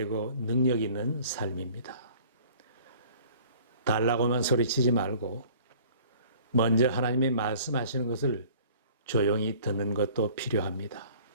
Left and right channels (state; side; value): inverted; both; correlation -0.50